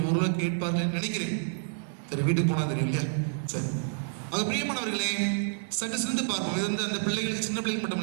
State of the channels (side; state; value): left; silent; digital silence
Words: ஓரளவு கேட்பார்கள் நினைக்கிறேன். சரி, வீட்டுக்கு போனா தெரியும் இல்லையா? சரி, அது பிரியமானவர்களே, சற்று சிந்து பார்ப்போம். இது வந்து அந்த பிள்ளைகளுக்கு, சின்ன பிள்ளைகள் மட்டும்